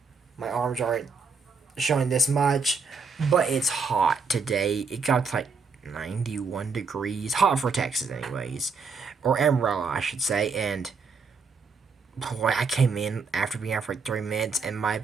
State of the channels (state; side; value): quieter; left; 4.9 dB